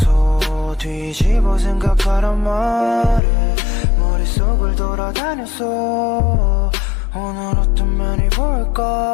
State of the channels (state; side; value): drops out; right; at 3.2 s